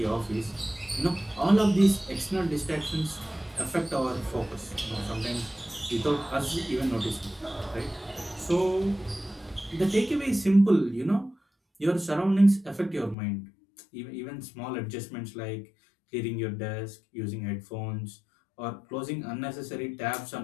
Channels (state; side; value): drops out; right; at 13.2 s